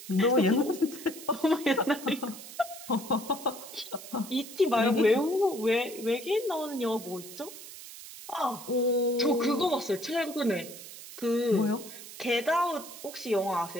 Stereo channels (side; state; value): right; noise; hiss, 14 dB below the sound